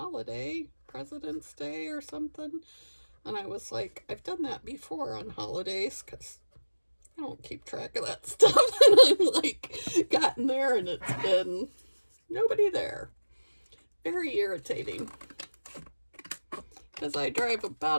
President's Day or something. And I was like, I've done that before on holidays because I don't keep track of that stuff. And I'm like, gotten there and it's been nobody there. Very irritating. Because I drive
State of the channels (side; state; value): both; inverted; correlation -1.00